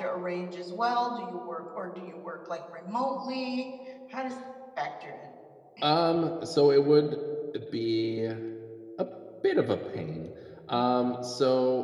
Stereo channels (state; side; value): identical; both; correlation 1.00